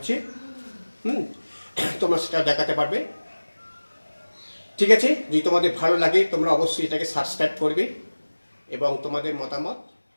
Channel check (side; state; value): both; inverted; correlation -1.00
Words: তোমরা সেটা দেখাতে পারবে। ঠিক আছে, যদি তোমাদের ভালো লাগে তোমরা অবশ্যই এটাকে সাবস্ক্রাইব করবে এবং তোমাদের মতামত